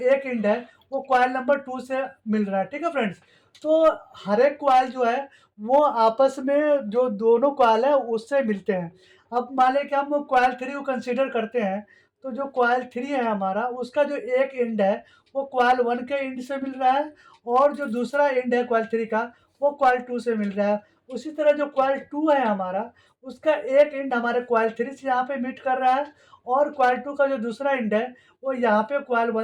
एंड है वो कॉइल नंबर 2 से मिल रहा है। ठीक है फ्रेंड्स। तो हर एक कॉइल जो है वो आपस में जो दोनों कॉइल है उससे मिलते हैं। अब मान लें कि हम कॉइल 3 को कंसीडर करते हैं, तो जो कॉइल 3 है हमारा उसका जो एक एंड है वो कॉइल 1 के एंड से मिल रहा है, और जो दूसरा एंड है कॉइल 3 का वो कॉइल 2 से मिल रहा है। उसी तरह जो कॉइल 2 है हमारा उसका एक एंड हमारे कॉइल 3 से यहाँ पे मीट कर रहा है, और कॉइल 2 का जो दूसरा एंड है वो यहाँ पे कॉइल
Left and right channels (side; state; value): both; identical; correlation 1.00